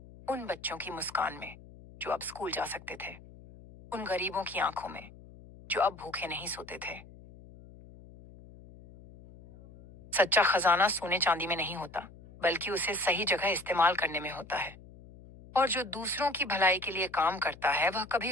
उन बच्चों की मुस्कान में जो अब स्कूल जा सकते थे, उन गरीबों की आंखों में जो अब भूखे नहीं सोते थे। सच्चा खजाना सोने चांदी में नहीं होता, बल्कि उसे सही जगह इस्तेमाल करने में होता है। और जो दूसरों की भलाई के लिए काम करता है, वह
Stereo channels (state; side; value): noise; left; hum, 20 dB below the sound